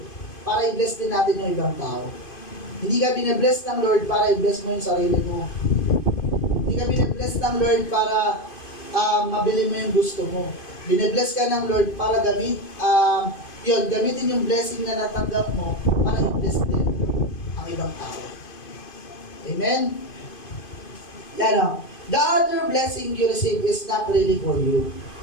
para i-bless din natin yung ibang tao. Hindi ka bine-bless ng Lord para i-bless mo yung sarili mo. Hindi ka bine-bless ng Lord para mabili mo yung gusto mo. Bine-bless ka ng Lord para gamitin yung blessing na natanggap mo para i-bless din ang ibang tao. Amen? Yan o. The other blessing you receive is not really for you.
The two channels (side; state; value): right; late; 2.5 ms